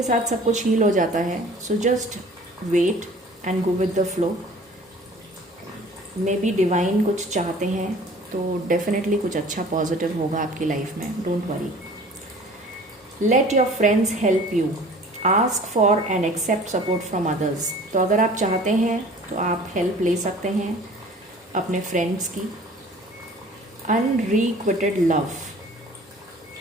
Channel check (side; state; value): both; normal; correlation 0.47